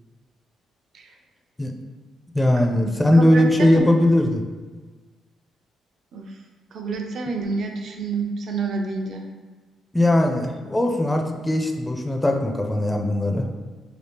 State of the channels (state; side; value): normal; both; correlation 0.91